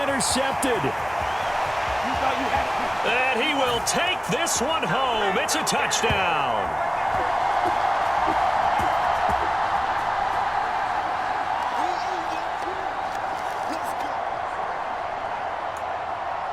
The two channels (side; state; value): both; identical; correlation 1.00